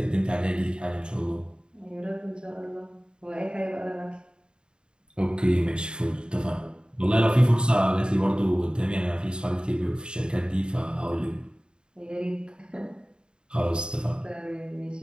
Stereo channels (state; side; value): late; left; 0.050 ms